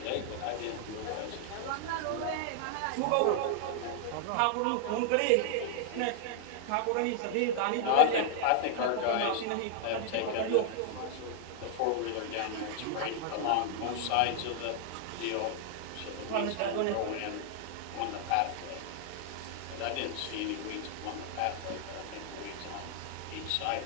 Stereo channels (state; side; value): different; both; correlation -0.01